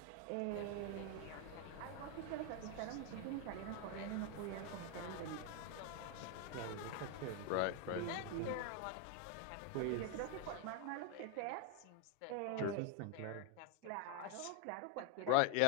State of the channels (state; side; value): different; both; correlation 0.01